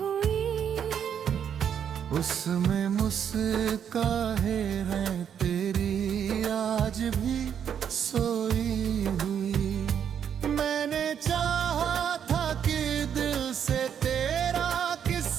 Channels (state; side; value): quieter; left; 8.4 dB